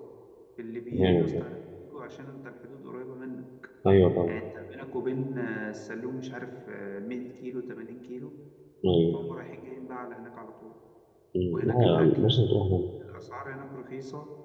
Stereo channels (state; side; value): identical; both; correlation 1.00